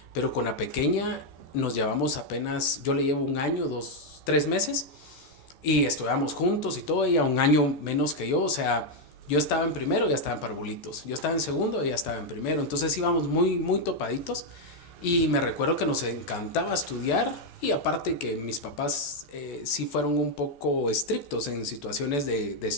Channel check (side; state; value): right; late; 14 ms